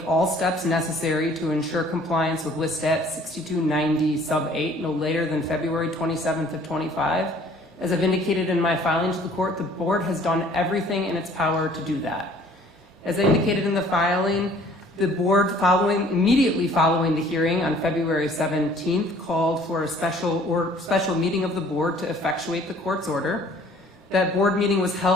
all steps necessary to ensure compliance with Listat 6290 sub 8 no later than February 27th of 25. As I've indicated in my filing to the court, the board has done everything in its power to do that. As I indicated in the filing, the board immediately following the hearing on February 17th called for a special meeting of the board to effectuate the court's order. That board meeting was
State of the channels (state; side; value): normal; both; correlation 0.55